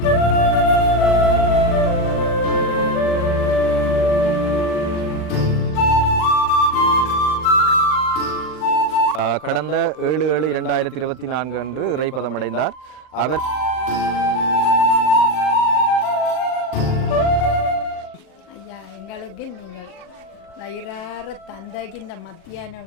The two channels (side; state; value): right; late; 39 ms